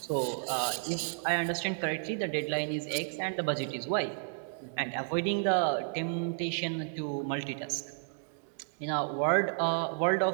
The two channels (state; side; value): silent; left; digital silence